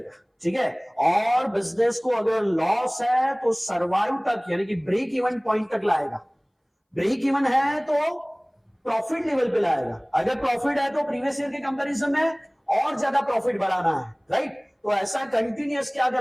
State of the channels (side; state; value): both; identical; correlation 1.00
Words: ठीक है। और बिजनेस को अगर लॉस है तो सर्वाइव तक, यानी कि ब्रेक इवन पॉइंट तक लाएगा। ब्रेक इवन है तो प्रॉफिट लेवल पे लाएगा, अगर प्रॉफिट है तो प्रीवियस ईयर के कंपैरिजन में और ज्यादा प्रॉफिट बढ़ाना है, राइट। तो ऐसा कंटिन्यूअस क्या